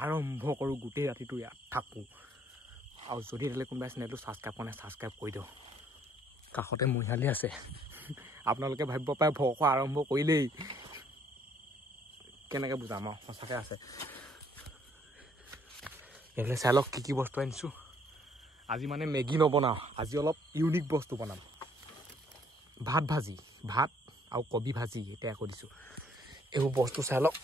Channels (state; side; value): normal; both; correlation 0.64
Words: আৰম্ভ কৰো গুটেই ৰাতিটো ইয়াত থাকো আৰু যদি এলে কোনবা চেনেলটো সাবস্ক্ৰাইব কৰে সাবস্ক্ৰাইব কৰি দিও কাখতে মহিয়ালি আছে আপোনালোকে ভাবিব পায় ভক আৰম্ভ কৰিলেই কেনেকৈ বুজাম সঁচাকৈ আছে এলে চালক কি বস্তু আনিছো আজি মানে মেগি নবনাও আজি অলপ ইউনিক বস্তু বনাম ভাত ভাজি ভাত আৰু কবি ভাজি এটা কৰিছো এই বস্তু চালক